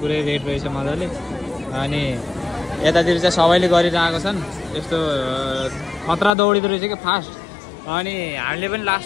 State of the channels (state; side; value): drops out; right; at 6.3 s